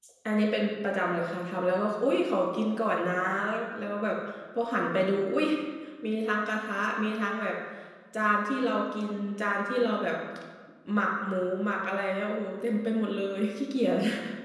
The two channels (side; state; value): both; identical; correlation 1.00